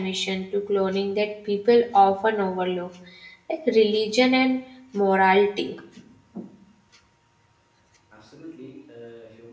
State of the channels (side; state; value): both; identical; correlation 1.00